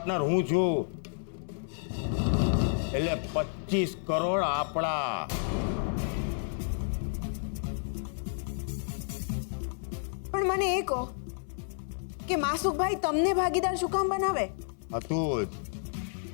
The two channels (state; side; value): silent; right; 57 dB below the other